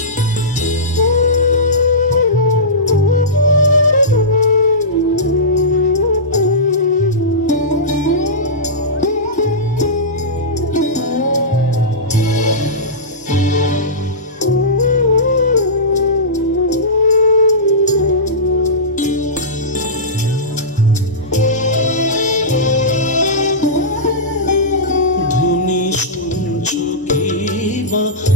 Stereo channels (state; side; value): normal; both; correlation -0.17